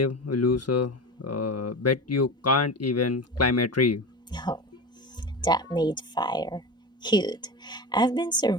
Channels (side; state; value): both; normal; correlation 0.26